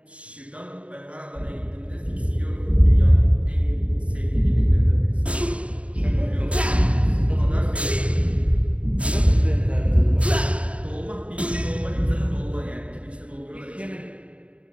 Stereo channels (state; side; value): late; left; 0.063 ms